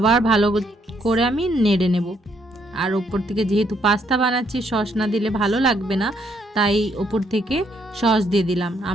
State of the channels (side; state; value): both; normal; correlation 0.72